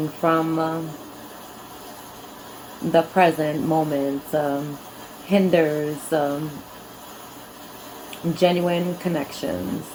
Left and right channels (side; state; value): both; identical; correlation 1.00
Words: from the present moment hinders genuine connections.